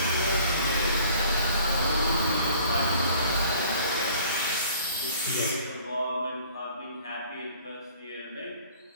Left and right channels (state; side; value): inverted; both; correlation -0.53